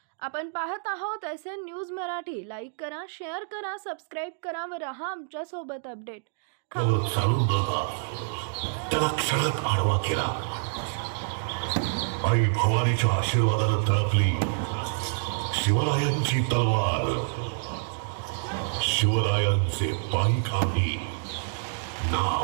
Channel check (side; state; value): left; silent; digital silence